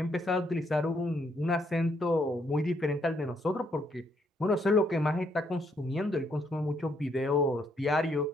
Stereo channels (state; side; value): normal; both; correlation 0.72